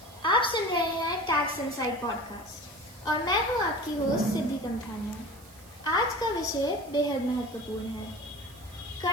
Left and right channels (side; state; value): right; noise; hiss, 22 dB below the sound